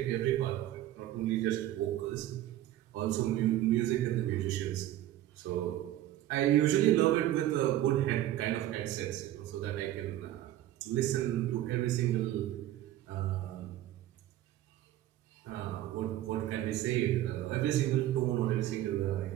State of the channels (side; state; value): left; quieter; 13.7 dB